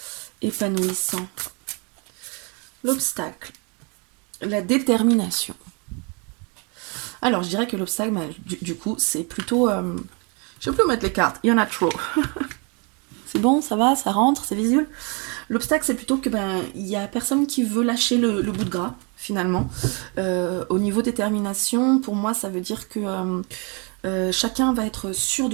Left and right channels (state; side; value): quieter; left; 33.2 dB